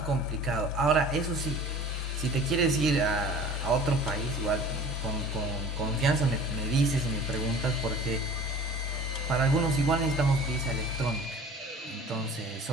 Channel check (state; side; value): normal; both; correlation 0.42